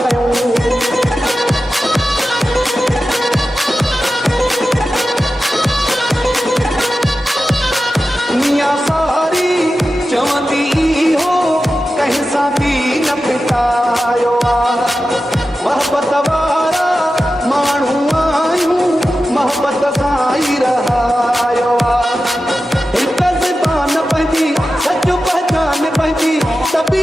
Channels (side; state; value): both; normal; correlation 0.93